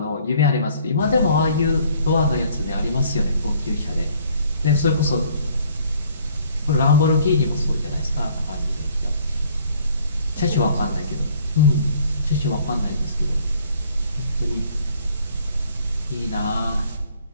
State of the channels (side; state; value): both; inverted; correlation -0.58